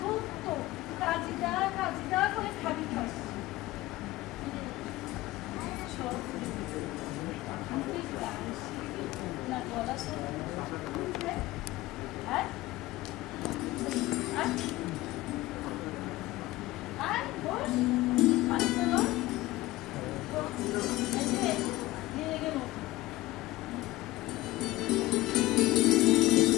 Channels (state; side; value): quieter; right; 18.0 dB